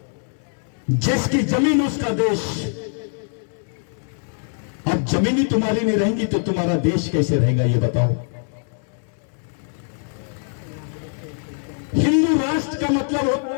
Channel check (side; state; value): right; silent; 55 dB below the other